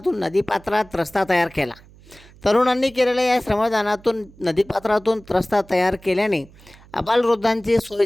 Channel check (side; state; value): right; noise; hum, 24 dB below the sound